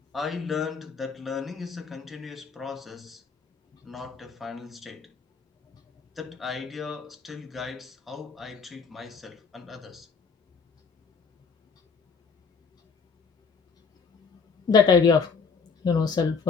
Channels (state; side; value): quieter; right; 5.3 dB